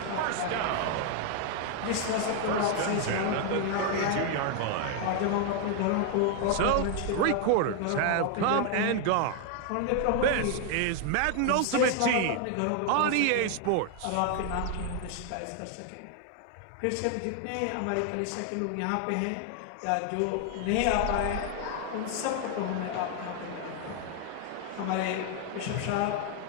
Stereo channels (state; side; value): different; both; correlation 0.00